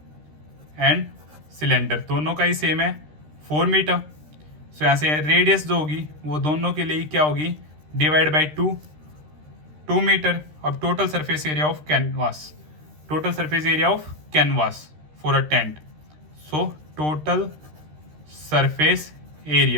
and cylinder दोनों का ही सेम है 4 मीटर। सो यहाँ से रेडियस जो होगी वो दोनों के लिए क्या होगी, डिवाइड बाई 2 मीटर। अब total surface area of canvas for a tent, so total surface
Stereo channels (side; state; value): left; late; 13 ms